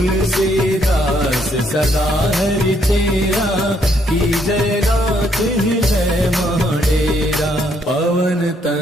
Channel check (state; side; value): normal; both; correlation 0.71